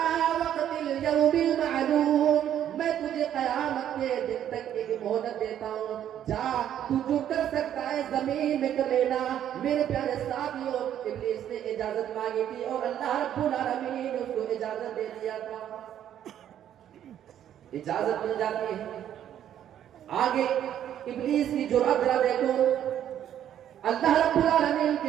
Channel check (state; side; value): quieter; left; 10.5 dB